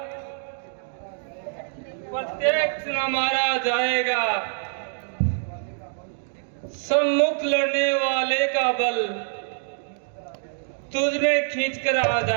प्रत्यक्ष न मारा जाएगा। सम्मुख लड़ने वाले का बल तुझ में खींच कर आ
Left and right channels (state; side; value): silent; left; digital silence